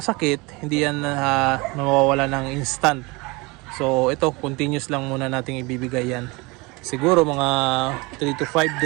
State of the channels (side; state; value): left; quieter; 25.4 dB